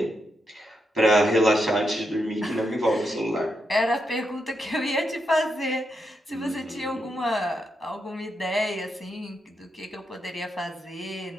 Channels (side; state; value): both; normal; correlation 0.83